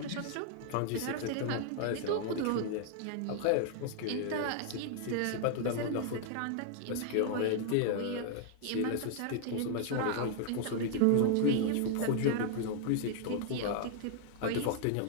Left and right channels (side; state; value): both; different; correlation 0.00